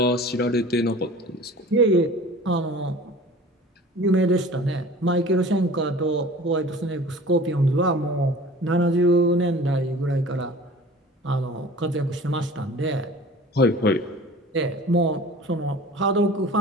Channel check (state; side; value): normal; both; correlation 0.43